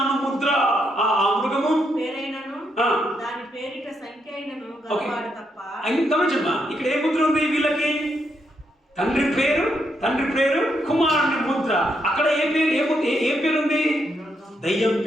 ముద్ర. ఆ మృగము పేరైనను, దాని పేరిట సంఖ్య అయినను గలవాడు తప్ప. గమనించమ్మా, ఇక్కడ ఏ ముద్ర ఉంది వీళ్ళకి? తండ్రి పేరు, కుమారుని ముద్ర. అక్కడ ఏ పేరు ఉంది? దయ్యం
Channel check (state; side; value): normal; both; correlation 0.78